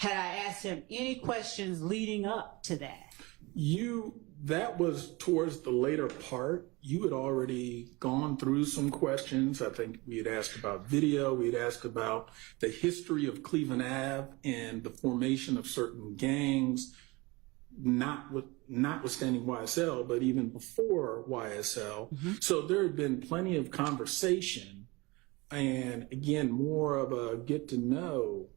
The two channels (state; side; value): quieter; left; 24.0 dB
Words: I asked him any questions leading up to that? You that was towards the later part. You had already gone through some questions. I think we had asked about video. We had asked about the history of Cleveland Ave and the formation of certain gangs, notwithstanding YSL, but even before YSL. Mm-hmm. So there had been plenty of conversation, and again, more of a get to know